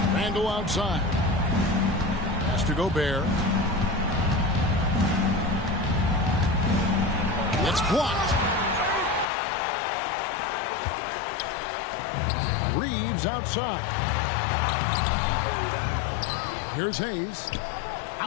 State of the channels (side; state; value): right; drops out; at 9.2 s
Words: Randall outside. Pass to Gobert. It's blocked. Reeves outside. Here's Hayes.